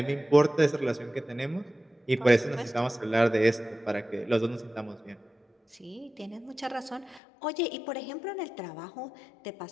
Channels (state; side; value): drops out; right; at 7.2 s